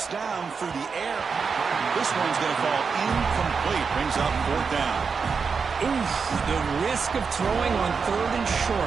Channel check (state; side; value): quieter; left; 5.5 dB